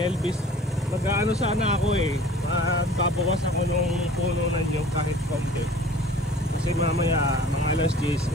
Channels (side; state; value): both; normal; correlation 0.47